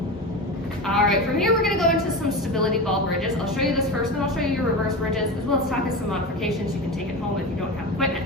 All right, from here we're gonna go into some stability ball bridges. I'll show you this first, then I'll show you your reverse bridges, as well as talk about some modifications you can take at home if you don't have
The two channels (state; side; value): normal; both; correlation 0.24